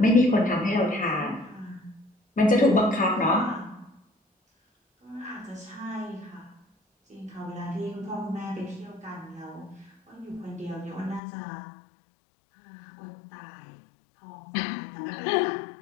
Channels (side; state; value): right; drops out; at 11.2 s